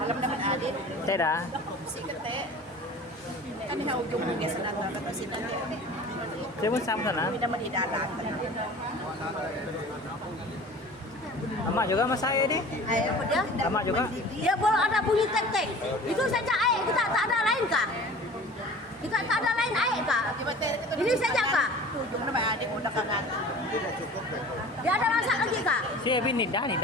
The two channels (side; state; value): both; normal; correlation 0.42